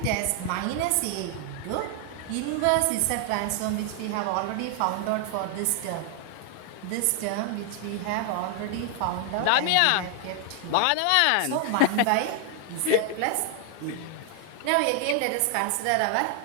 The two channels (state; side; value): different; both; correlation 0.00